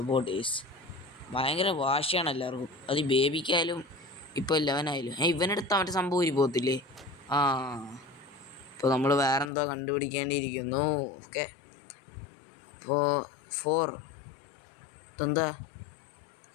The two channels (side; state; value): right; drops out; at 9.5 s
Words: ഭയങ്കര വാശിയാണ് എല്ലാവർക്കും. അത് ബേബിക്കായാലും ഇപ്പോൾ 11 ആയാലും. ഇവനെടുത്ത മറ്റേ സംഭവം ഊരി പോകത്തില്ലേ? ഇപ്പോൾ നമ്മൾ വേറെന്തോ കണ്ടുപിടിക്കേണ്ടിയിരിക്കുന്നു. ഓക്കെ അപ്പോൾ 4 ഇതെന്താ